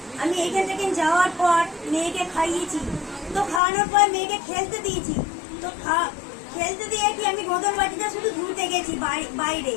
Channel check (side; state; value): right; drops out; at 3.6 s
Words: আমি এইখান থেকে যাওয়ার পর মেয়েকে খাইয়েছি। তো খাওয়ানোর পর মেয়েকে খেলতে দিয়েছি। তো খেলতে দিয়ে কি আমি গোদর বাটিটা শুধু ধুতে গেছি বাইরে।